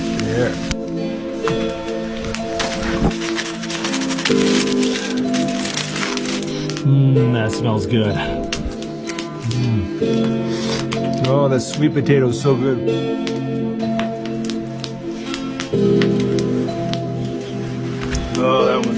There. That smells good. Oh, the sweet potato is so good.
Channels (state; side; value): identical; both; correlation 1.00